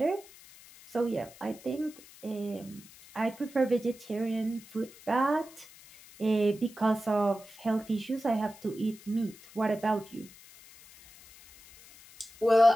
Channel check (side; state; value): left; noise; hiss, 22 dB below the sound